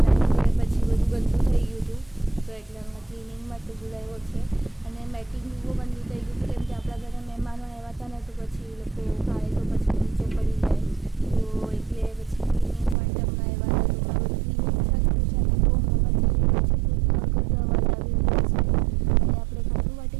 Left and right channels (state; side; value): drops out; left; at 13.0 s